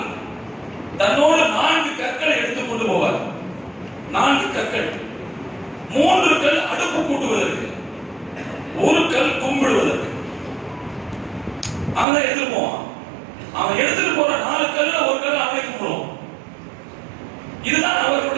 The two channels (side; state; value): left; drops out; at 12.1 s